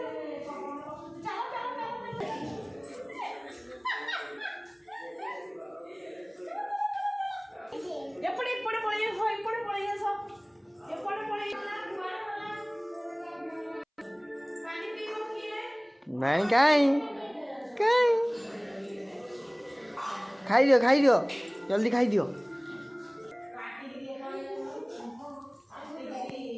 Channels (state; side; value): identical; both; correlation 1.00